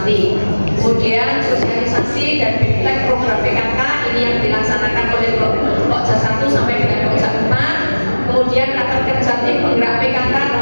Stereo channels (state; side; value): inverted; both; correlation -1.00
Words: Kemudian sosialisasi dan bimbingan program PKK ini yang dilaksanakan oleh pojok 1 sampai dengan pojok 4. Kemudian rapat kerja tim penggerak PKK